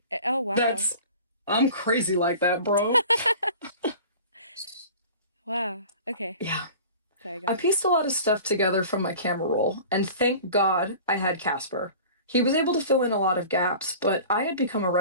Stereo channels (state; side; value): inverted; both; correlation -0.41